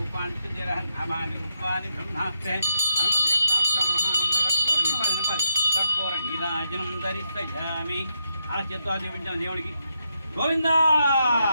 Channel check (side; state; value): both; inverted; correlation -0.81